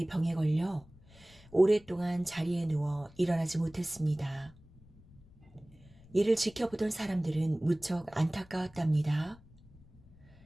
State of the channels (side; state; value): left; noise; rumble, 25 dB below the sound